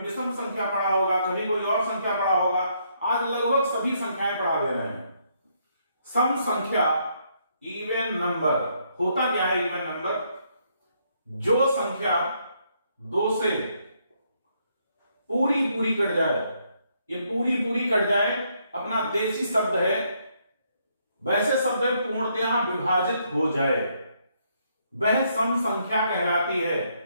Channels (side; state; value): both; inverted; correlation -0.73